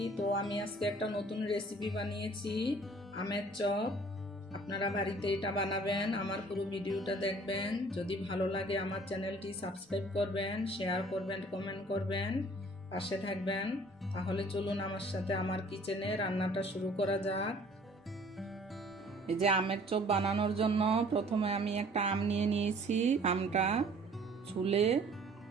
তো আমি আজকে একটা নতুন রেসিপি বানিয়েছি, আমের চপ। আপনারা বাড়িতে এটা বানাবেন, আমার পুরো ভিডিওটা দেখবেন। যদি ভালো লাগে আমার চ্যানেলটি সাবস্ক্রাইব করবেন, শেয়ার করবেন, কমেন্ট করবেন, পাশে থাকবেন। তাহলে চলুন আমার সাথে আমার কিচেনে রান্নাটা শুরু করা যাক। এই যে আমের চপ বানানোর জন্য প্রথমে আমি একটা আম নিয়ে নিয়েছি। আমটা ছুলে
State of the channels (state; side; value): normal; both; correlation 0.53